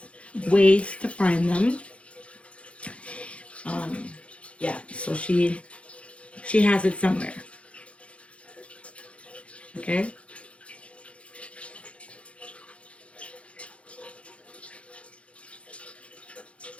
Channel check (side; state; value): right; late; 0.061 ms